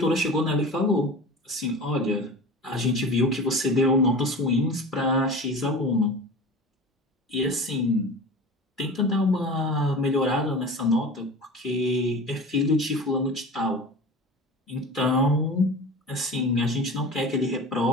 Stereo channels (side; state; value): both; normal; correlation 0.34